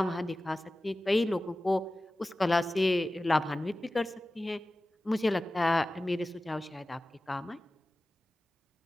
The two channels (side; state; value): both; normal; correlation 0.96